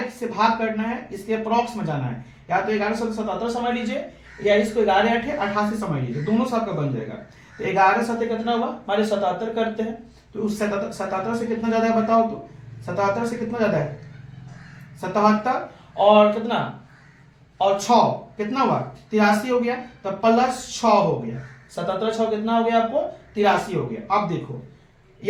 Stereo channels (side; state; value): both; identical; correlation 1.00